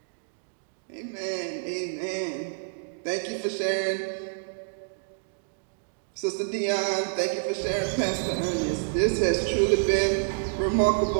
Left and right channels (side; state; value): left; silent; digital silence